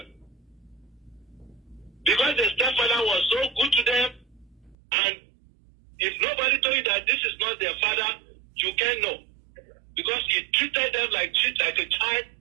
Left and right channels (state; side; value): drops out; left; at 4.8 s